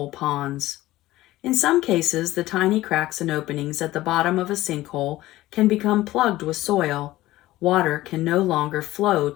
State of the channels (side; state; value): right; quieter; 16.6 dB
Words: ponds. In some cases, the tiny cracks and openings at the bottom of a sinkhole can become plugged with soil. Water can no longer flow